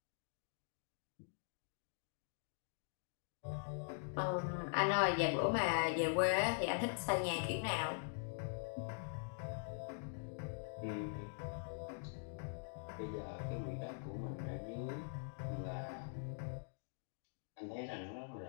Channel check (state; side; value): silent; right; digital silence